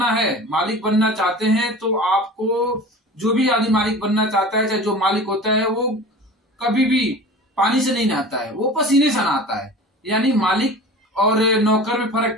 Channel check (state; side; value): normal; both; correlation 0.37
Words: चाहते हैं तो आपको जो भी आदमी मालिक बनना चाहता है, चाहे जो मालिक होता है, वो कभी भी पानी से नहीं नहाता है, वो पसीने से नहाता है। यानी मालिक और नौकर में फर्क